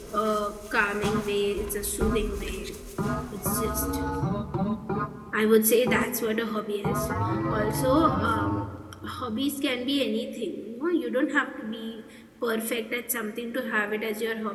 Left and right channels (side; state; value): both; identical; correlation 1.00